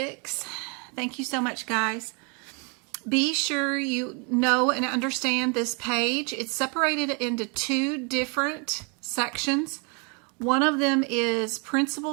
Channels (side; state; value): left; quieter; 34.7 dB